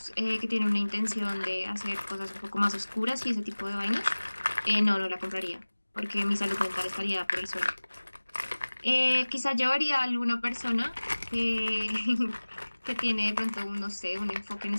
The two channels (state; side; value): inverted; both; correlation -1.00